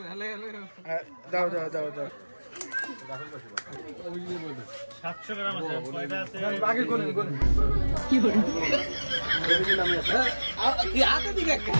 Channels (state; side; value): inverted; both; correlation -1.00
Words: দাও দাও দাও দাও। 700 গ্রাম আছে, কয়টা আছে? আগে কোন কি বলি কি আতে দিকে